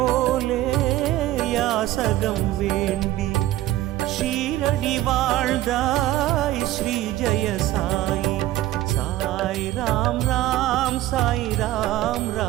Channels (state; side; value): quieter; left; 15.0 dB